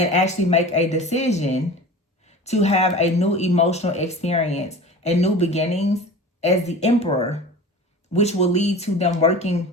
actually make a decision to have a new emotional experience and new beginnings as the Emperor, which will lead to them working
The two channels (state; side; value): normal; both; correlation 0.36